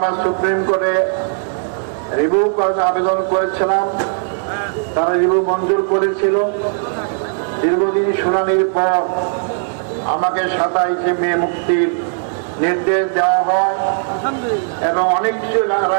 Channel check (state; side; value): silent; left; digital silence